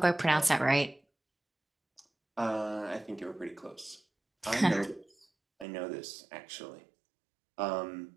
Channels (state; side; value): drops out; left; at 5.7 s